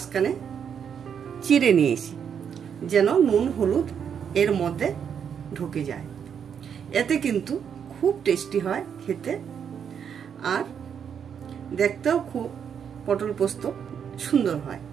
চিড়ে নিয়েছি, যেন নুন হলুদ এর মধ্যে ঢুকে যায়। এতে কিন্তু খুব টেস্টি হয় খেতে, আর দেখতেও খুব পটল পোস্ত সুন্দর হয়।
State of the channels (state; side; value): quieter; left; 7.7 dB